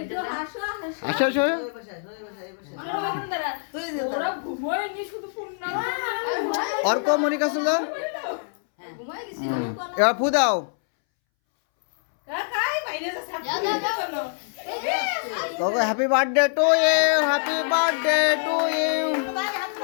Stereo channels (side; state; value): right; silent; 62 dB below the other